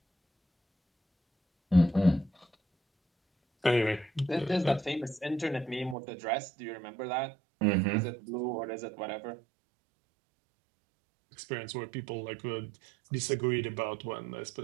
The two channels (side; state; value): left; drops out; at 6.0 s